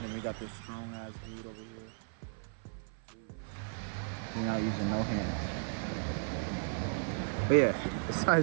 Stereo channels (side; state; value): left; silent; 54 dB below the other